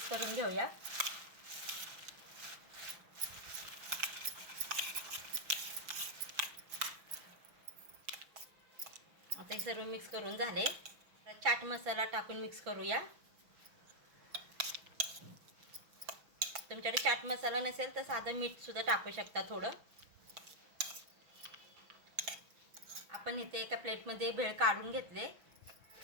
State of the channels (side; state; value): left; late; 6.1 ms